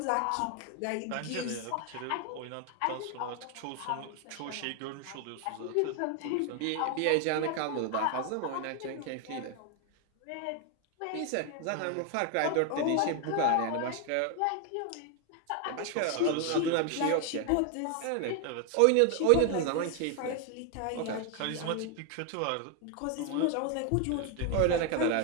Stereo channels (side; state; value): both; different; correlation 0.01